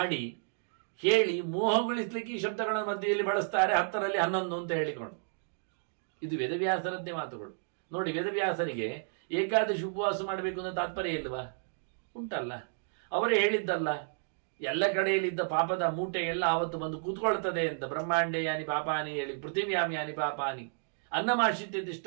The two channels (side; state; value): left; silent; digital silence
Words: ಹೇಳಿ ಮೋಹಗೊಳಿಸ್ಲಿಕ್ಕೆ ಈ ಶಬ್ದಗಳ ಮಧ್ಯೆಯಲ್ಲಿ ಬಳಸ್ತಾರೆ, 10ರಲ್ಲಿ 11 ಅಂತ ಹೇಳಿಕೊಂಡು. ಇದು ವೇದವ್ಯಾಸರದ್ದೇ ಮಾತುಗಳು. ನೋಡಿ, ವೇದವ್ಯಾಸರಿಗೆ ಏಕಾದಶಿ ಉಪವಾಸ ಮಾಡಬೇಕು ಅನ್ನೋ ತಾತ್ಪರ್ಯ ಇಲ್ವಾ? ಉಂಟಲ್ಲ. ಅವರೇ ಹೇಳಿದ್ದಲ್ಲ, ಎಲ್ಲ ಕಡೆಯಲ್ಲಿದ್ದ ಪಾಪದ ಮೂಟೆ ಎಲ್ಲ ಆವತ್ತು ಬಂದು ಕೂತ್ಕೊಳ್ತದೆ ಅಂತ. ಬ್ರಹ್ಮಾಂಡೇ ಯಾನಿ ಪಾಪಾನಿ ಹೇಳಿ, ಪೃಥಿವ್ಯಾಮ್ ಯಾನಿ ಪಾಪಾನಿ